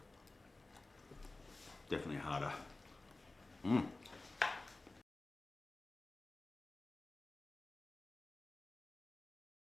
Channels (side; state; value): right; quieter; 3.1 dB